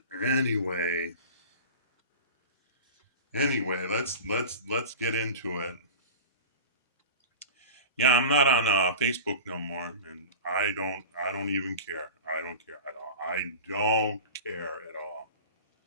Anyway, let's get into it. Yeah, I'm not on Facebook no more, and I don't even care. I don't care at all. I don't care at all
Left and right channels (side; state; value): both; inverted; correlation -0.34